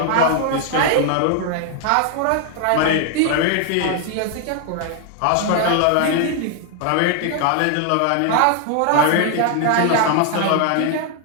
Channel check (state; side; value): different; both; correlation 0.00